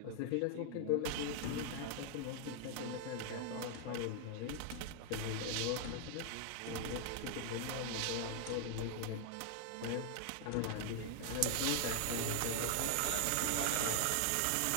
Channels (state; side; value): different; both; correlation 0.00